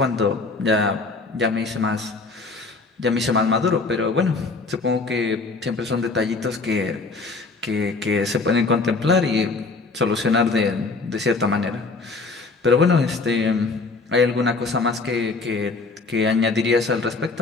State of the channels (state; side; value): quieter; right; 3.8 dB